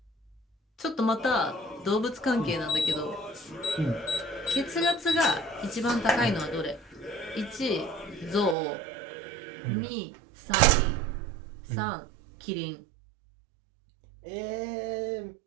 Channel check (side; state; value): left; drops out; at 8.6 s